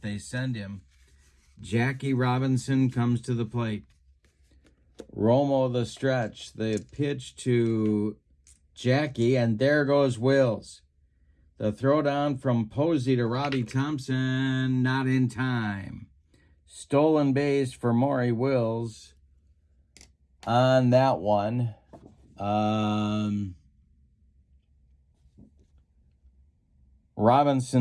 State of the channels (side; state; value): both; identical; correlation 1.00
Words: they send him. Jackie Robinson comes to the plate. Romo the stretch. The pitch to Jackie, and there goes Wills. The throwdown from Posey to Robbie Thompson, not in time. Stolen base for Maury Wills on that one.